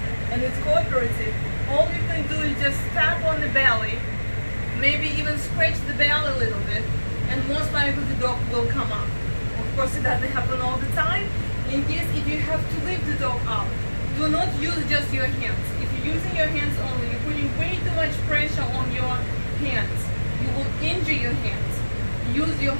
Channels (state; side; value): inverted; both; correlation -1.00